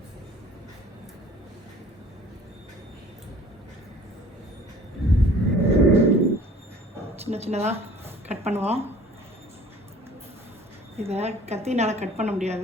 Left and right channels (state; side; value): normal; both; correlation 0.51